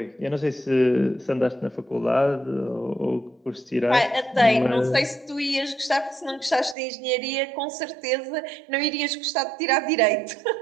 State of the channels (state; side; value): drops out; left; at 6.8 s